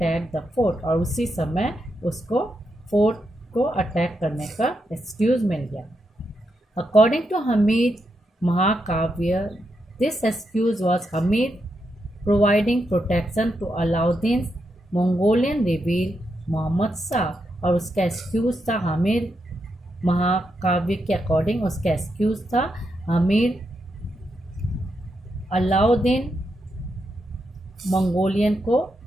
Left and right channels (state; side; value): normal; both; correlation 0.83